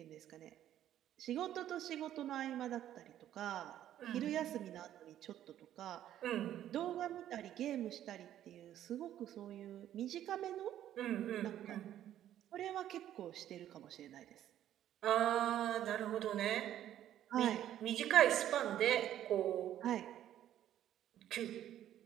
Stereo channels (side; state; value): left; quieter; 11.7 dB